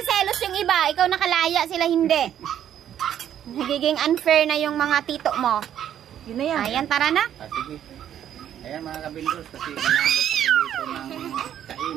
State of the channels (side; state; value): left; quieter; 10.3 dB